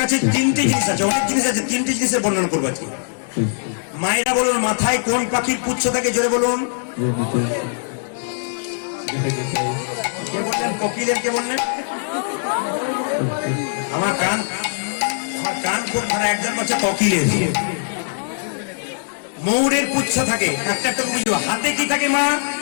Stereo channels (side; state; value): right; silent; digital silence